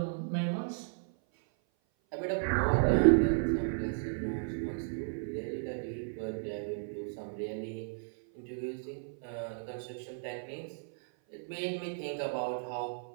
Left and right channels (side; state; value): left; silent; 55 dB below the other